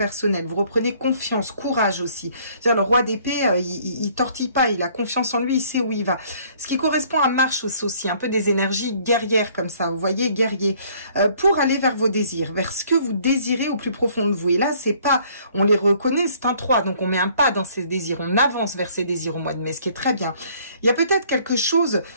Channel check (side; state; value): both; inverted; correlation -0.60